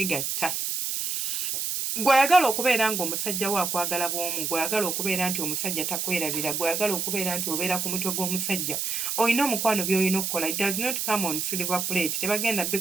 Gw'ayagala okubeera ng'omusajja we akwagala bw'omu, gw'ayagala okubeera nti omusajja takwerabira, gw'ayagala okubeera nti obeera ku mutwe gw'omusajja, olina omukwano by'olina okukola. It does not come on silver plate. Tebagenda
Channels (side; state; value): right; noise; hiss, 1 dB below the sound